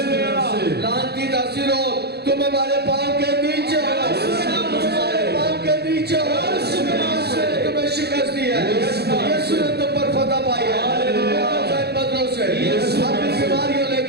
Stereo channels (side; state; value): left; late; 0.47 ms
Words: لعنتی تاثیروں تم ہمارے پاؤں کے نیچے ہو تمہارے پاؤں کے نیچے ہو یسوع نے تمہیں شکست دی ہے یسوع نے تم پر فتح پائی ہے بدلوں سے اپنی بیماریوں لے